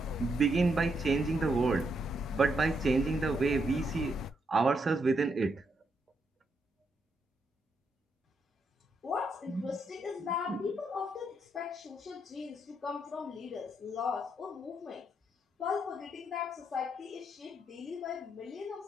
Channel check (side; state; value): both; normal; correlation 0.78